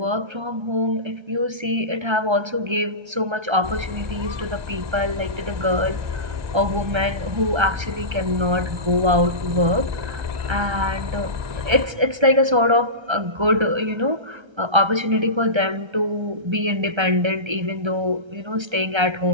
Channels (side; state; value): left; late; 1.3 ms